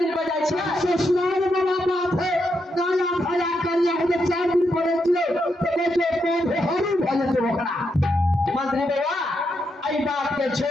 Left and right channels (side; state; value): both; normal; correlation 0.82